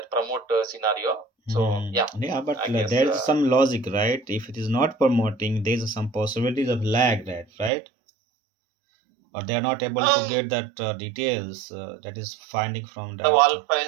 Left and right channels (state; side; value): drops out; left; at 7.7 s